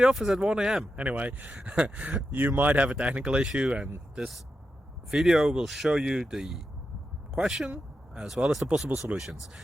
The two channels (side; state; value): both; normal; correlation 0.88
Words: office at 1 a.m.? Anyway, you might have a technical issue and this video will show you the question as well as the possible solutions.